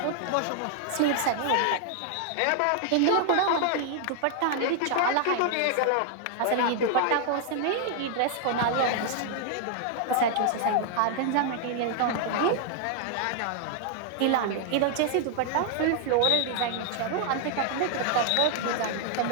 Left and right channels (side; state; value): both; different; correlation 0.00